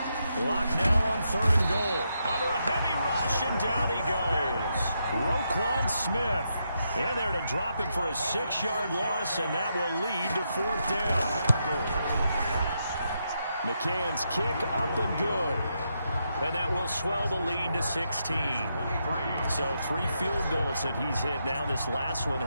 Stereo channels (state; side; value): inverted; both; correlation -0.82